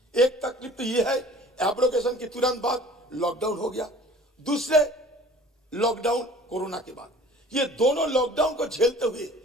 एक तकलीफ तो ये है, एब्रोगेशन के तुरंत बाद लॉकडाउन हो गया, दूसरे लॉकडाउन कोरोना के बाद। ये दोनों लॉकडाउन को झेलते हुए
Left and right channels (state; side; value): normal; both; correlation 0.47